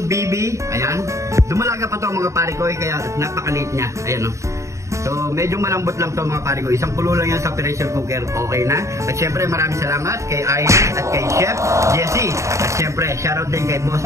BB. Ayan. Dumalaga pa to mga pare ko kaya napakaliit niya. Ayan o. So medyo malambot lang to mga pare ko. Isang kulo lang yan sa pressure cooker. Okay na. At syempre maraming salamat kay Iris at kay Chef Jessie. At syempre shoutout din kay Boss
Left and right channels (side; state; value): left; late; 0.14 ms